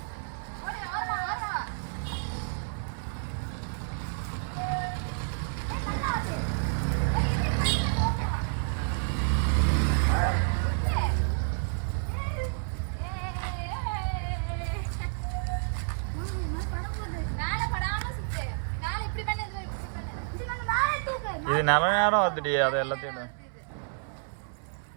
இது நல்ல நேரம் வந்துடி, அதை எல்லாத்தையும்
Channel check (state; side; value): silent; left; 58 dB below the other